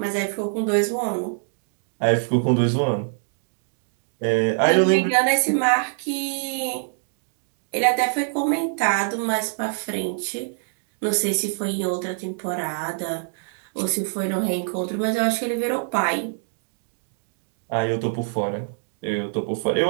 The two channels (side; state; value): left; silent; digital silence